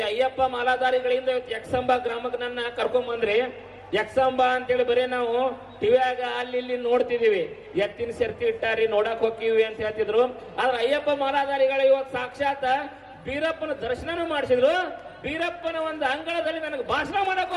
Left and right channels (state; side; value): identical; both; correlation 1.00